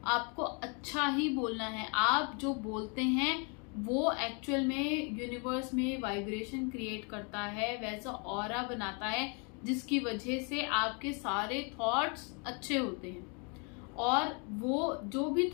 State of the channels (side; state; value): right; quieter; 35.5 dB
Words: आपको अच्छा ही बोलना है। आप जो बोलते हैं वो एक्चुअल में यूनिवर्स में वाइब्रेशन क्रिएट करता है, वैसा ऑरा बनाता है, जिसकी वजह से आपके सारे थॉट्स अच्छे होते हैं, और वो जो भी